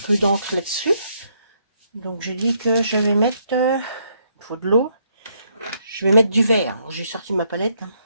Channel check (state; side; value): inverted; both; correlation -0.72